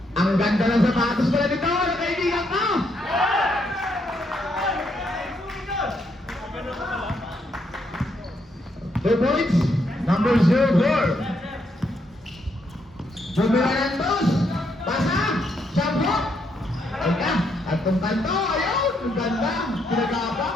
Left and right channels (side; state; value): both; normal; correlation 0.76